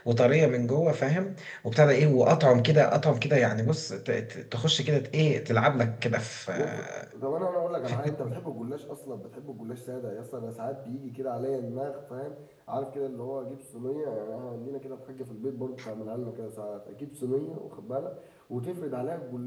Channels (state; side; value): identical; both; correlation 1.00